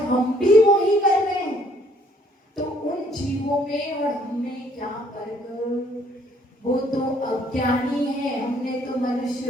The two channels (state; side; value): normal; both; correlation 0.63